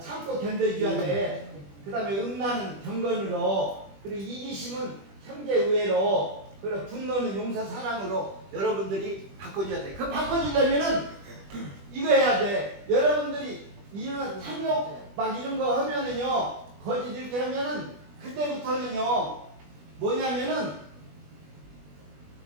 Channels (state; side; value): late; left; 20 ms